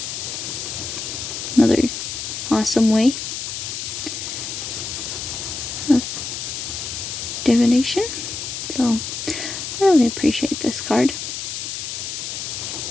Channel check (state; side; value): noise; left; hiss, 5 dB below the sound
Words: Another awesome way of divination. So I really appreciate this card.